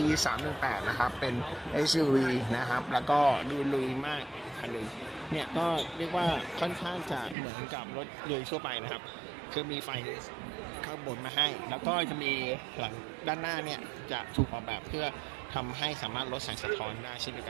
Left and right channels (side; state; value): left; drops out; at 7.4 s